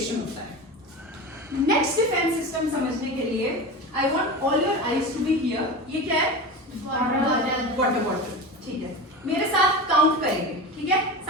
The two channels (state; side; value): normal; both; correlation 0.27